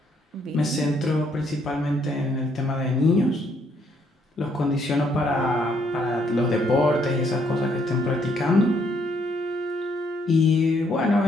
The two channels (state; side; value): normal; both; correlation 0.70